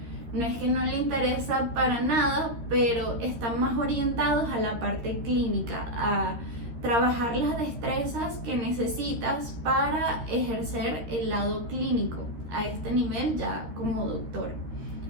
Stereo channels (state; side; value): late; left; 13 ms